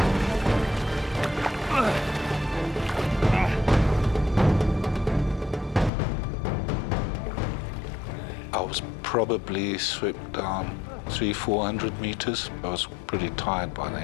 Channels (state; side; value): drops out; right; at 5.9 s